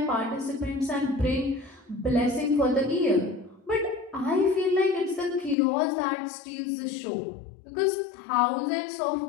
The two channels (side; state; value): right; drops out; at 5.6 s